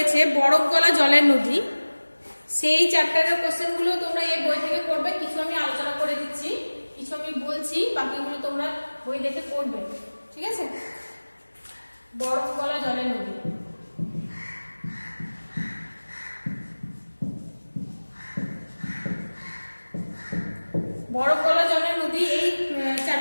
বরফ গলা জলের নদী, সেই চ্যাপ্টারের কোশ্চেনগুলো তোমরা এই বই থেকে করবে। কিছু আমি আলোচনা করে দিচ্ছি, কিছু আমি বলছি, বাকিগুলো তোমরা বই দেখে করবে, ঠিক আছে? বরফ গলা জলের নদী। বরফ গলা জলের নদী, এই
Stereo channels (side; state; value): both; inverted; correlation -1.00